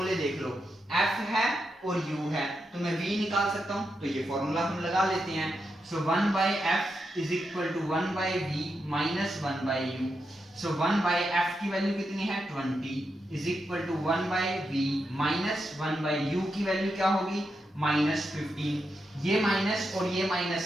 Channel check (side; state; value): both; normal; correlation 0.85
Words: देख लो, f है और u है तो मैं v निकाल सकता हूं, तो ये फॉर्मूला हम लगा लेते हैं। So 1/f is equal to 1/v minus 1/u। So 1/f की वैल्यू कितनी है 20 is equal to 1/v minus 1/u की वैल्यू क्या होगी -15। ये माइनस और ये